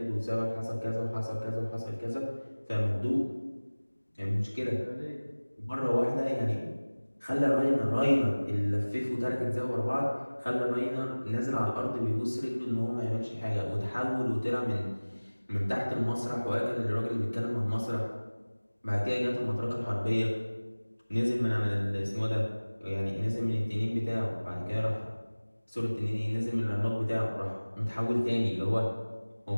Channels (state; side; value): inverted; both; correlation -1.00